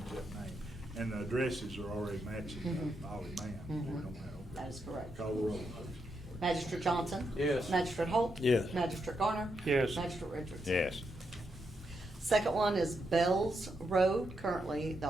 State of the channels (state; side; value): normal; both; correlation 0.82